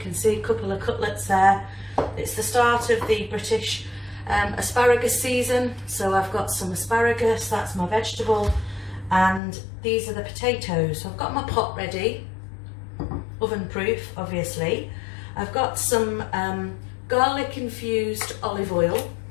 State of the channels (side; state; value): right; drops out; at 9.4 s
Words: see, a couple of cutlets there. It's the start of the British asparagus season, so I've got some asparagus, that's my vegetable, and these are the potatoes. So I've got my pot ready, oven proof obviously. I've got some garlic infused olive oil